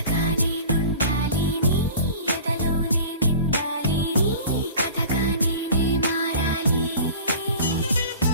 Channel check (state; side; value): inverted; both; correlation -0.40